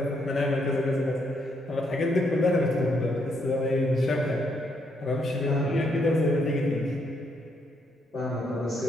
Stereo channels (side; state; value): both; normal; correlation 0.75